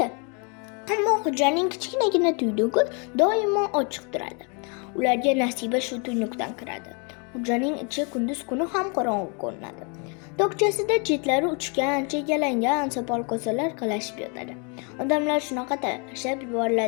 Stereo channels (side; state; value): right; quieter; 35.3 dB